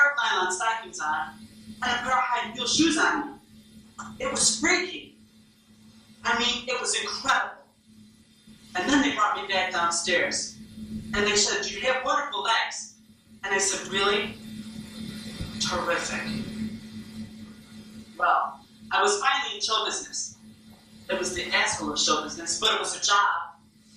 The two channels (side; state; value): both; identical; correlation 1.00